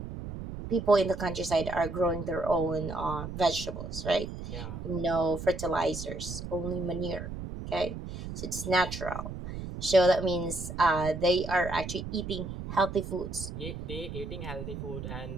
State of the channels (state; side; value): noise; right; rumble, 8 dB below the sound